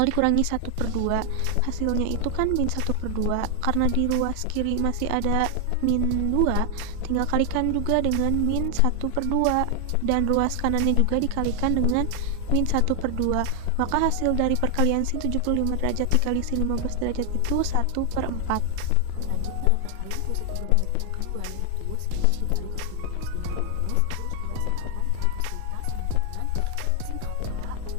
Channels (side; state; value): both; different; correlation 0.00